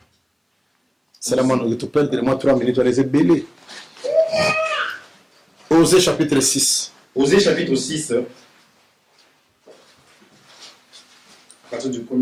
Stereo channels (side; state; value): both; identical; correlation 1.00